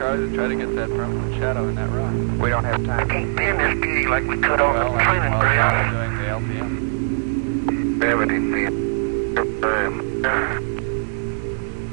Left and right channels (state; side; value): silent; left; 60 dB below the other